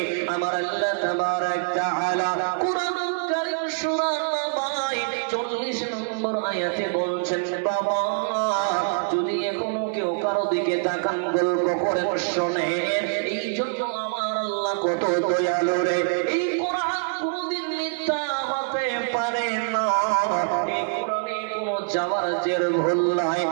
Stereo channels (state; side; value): silent; left; 62 dB below the other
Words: আমার আল্লাহ তাবারক তাআলা কুরআনুল কারীম সূরা নাবায় 40 নম্বর আয়াতে বলছেন, বাবা যদি এখনো কেউ কারো দিকে তাকান গল্প করেন শোনেন, এই জন্য আমার আল্লাহ কত দয়ালু রে। এই কোরআন কোনদিন মিথ্যা হতে পারে না, এই কোরআনে কোনো যাওয়ার জের ভুল নাই।